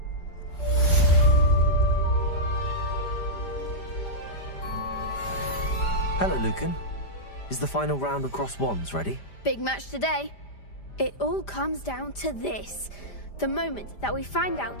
Hello, Lucan. Is the final round of crossed wands ready? Big match today. It all comes down to this. The moment that we find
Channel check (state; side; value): late; right; 5.0 ms